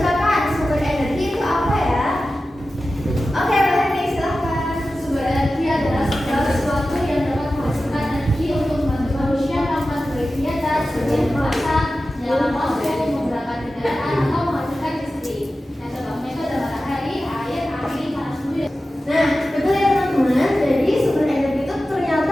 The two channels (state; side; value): normal; both; correlation 0.94